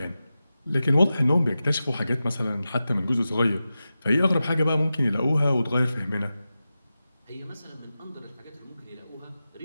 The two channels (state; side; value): inverted; both; correlation -0.93